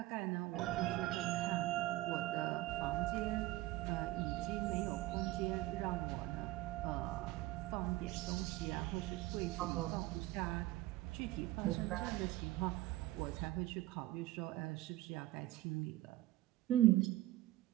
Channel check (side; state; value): left; quieter; 17.2 dB